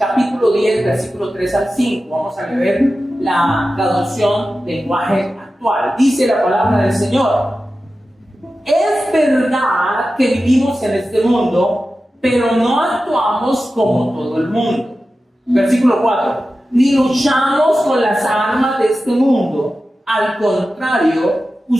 10, versículo 3 al 5. Vamos a leer la traducción lenguaje actual. Dice la palabra del Señor: es verdad que vivimos en este mundo, pero no actuamos como todo el mundo. Versículo 4. Ni luchamos con las armas de este mundo. Al contrario,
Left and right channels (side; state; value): both; normal; correlation 0.93